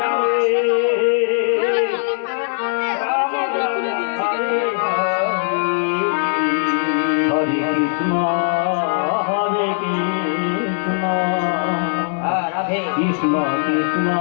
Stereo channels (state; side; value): silent; right; 66 dB below the other